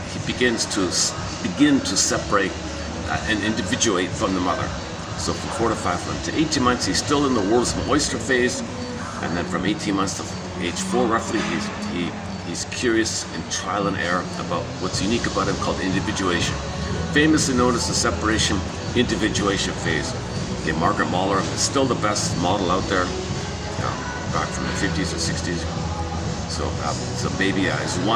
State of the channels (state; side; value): identical; both; correlation 1.00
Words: separate and individuate from the mother. So from 4 to 5 months to 18 months, he's still in the world's oyster phase, and then from 18 months to age 4, roughly, he's curious and trial and error about what's unique about him, called individuation, famously known as the separation individuation phase. Okay, Margaret Mahler is still the best model out there, back from the 50s or 60s. So baby is